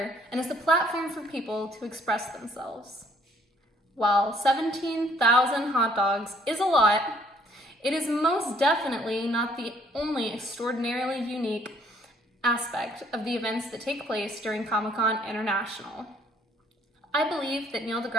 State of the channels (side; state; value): both; normal; correlation 0.62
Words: and is a platform for people to express themselves. While 17,000 hot dogs is a lot, it is most definitely not the only extraordinarily unique aspect of the events that take place during Comic-Con International. I believe that Neil